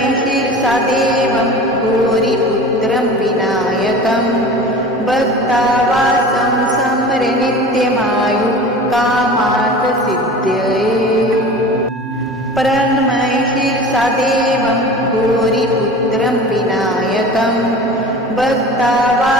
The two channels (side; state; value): both; normal; correlation 0.38